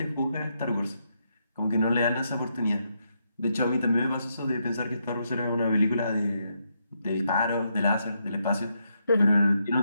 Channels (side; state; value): both; inverted; correlation -0.79